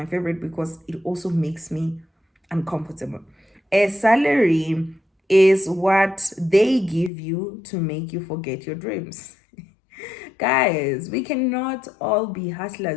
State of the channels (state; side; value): drops out; right; at 7.1 s